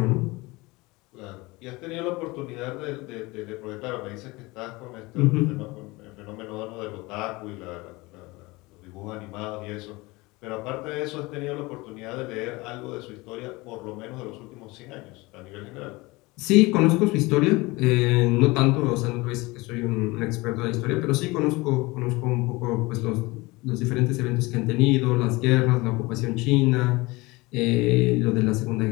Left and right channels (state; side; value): quieter; right; 22.9 dB